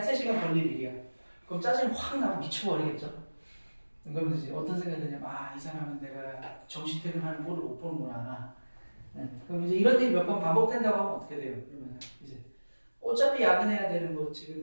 3시간 걸릴 일이야. 그럼 짜증이 확 나고 미쳐버리겠죠. 그러면 이제 어떤 생각이 드냐면 이 사람은 내가 정시 퇴근하는 꼴을 못 보는구나. 네. 그럼 이제 이런 일이 몇 번 반복된다고 하면 어떻게 돼요? 그러면 이제 어차피 야근해야 되는 거 지금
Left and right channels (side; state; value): both; inverted; correlation -1.00